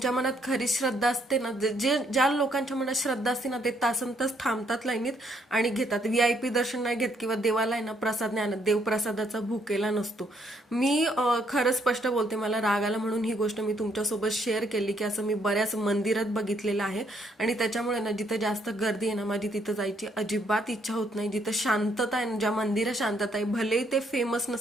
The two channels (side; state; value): both; normal; correlation 0.71